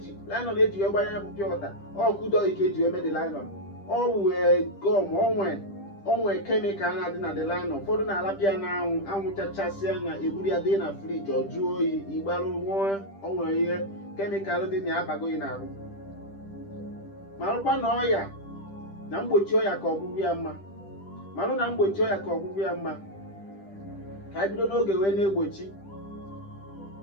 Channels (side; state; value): right; late; 10 ms